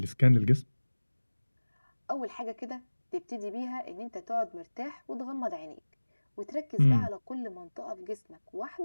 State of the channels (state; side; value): inverted; both; correlation -1.00